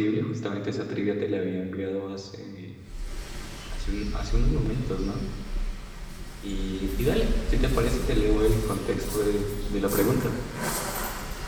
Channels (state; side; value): identical; both; correlation 1.00